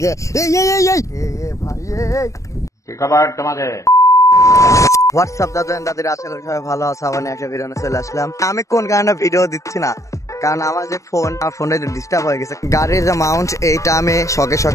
কে? হোয়াটসঅ্যাপ দাদাদের, আশা করি সবাই ভালো আছে। আবার একটা ভিডিও চলে আসলাম। আমি কোন কারণে ভিডিও দিচ্ছি না, কারণ আমার যে ফোনটা ডিস্টার্ব হয়ে গেছে। গাড়ির যে মাউন্ট এইটা আমি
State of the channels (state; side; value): late; right; 0.15 ms